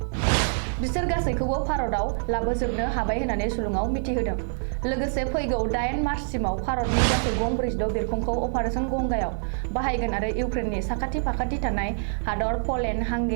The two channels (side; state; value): left; silent; 61 dB below the other